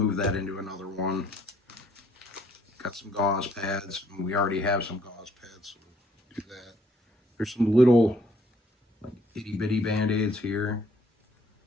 that into another one. Got some gauze pads, and we already have some gauze pads, so we'll do that. There's some little like itty bitty band-aids here.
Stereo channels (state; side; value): normal; both; correlation 0.65